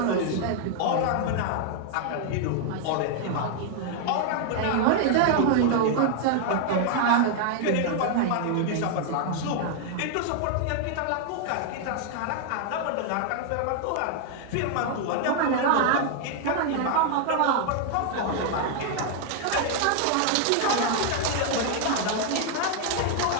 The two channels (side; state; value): both; different; correlation 0.00